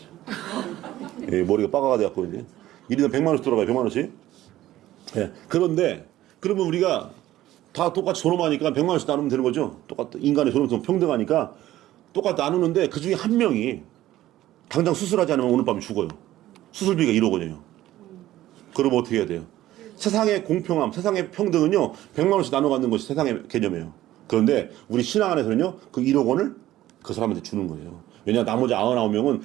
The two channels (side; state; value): left; quieter; 14.6 dB